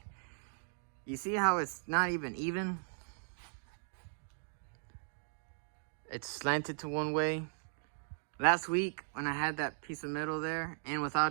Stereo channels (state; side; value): silent; left; digital silence